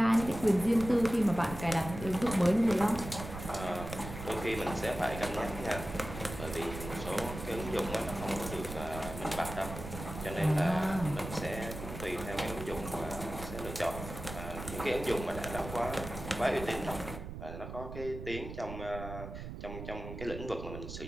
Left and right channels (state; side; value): noise; right; rumble, 9 dB below the sound